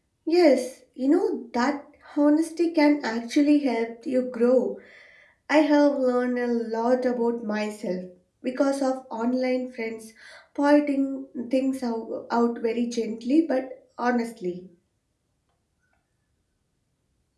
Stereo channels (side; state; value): both; identical; correlation 1.00